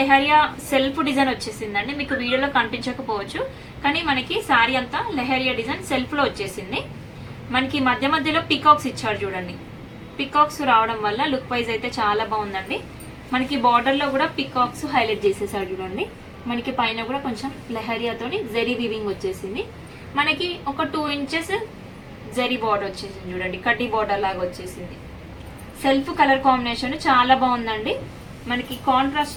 సెల్ఫ్ డిజైన్ వచ్చేసిందండి. మీకు వీడియోలో కనిపించకపోవచ్చు, కానీ మనకి శారీ అంతా లెహరియా డిజైన్ సెల్ఫ్ లో వచ్చేసింది. మనకి మధ్య మధ్యలో పికాక్స్ ఇచ్చారు చూడండి. పికాక్స్ రావడం వల్ల లుక్ వైజ్ అయితే చాలా బాగుందండి. మనకి బార్డర్ లో కూడా పికాక్స్ హైలైట్ చేసేసారు చూడండి. మనకి పైన కూడా కొంచెం లెహరియాతోని జరీ వీవింగ్ వచ్చేసింది. మనకి ఒక 2 ఇంచెస్ జరీ బార్డర్ వచ్చేసింది చూడండి, కడ్డీ బార్డర్ లాగా వచ్చేసింది. సెల్ఫ్ కలర్ కాంబినేషన్ చాలా బాగుందండి. మనకి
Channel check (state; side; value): identical; both; correlation 1.00